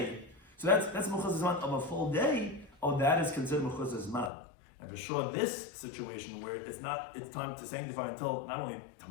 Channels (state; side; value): drops out; right; at 4.3 s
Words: So that's Mechuzas Zman of a full day. Oh, that is considered Mechuzas Zman. And for sure, this situation where it's time to sanctify until not only